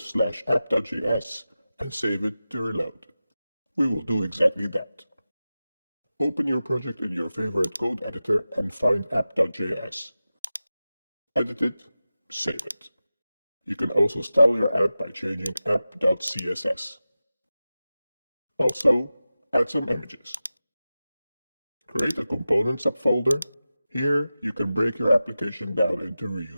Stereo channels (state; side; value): inverted; both; correlation -0.94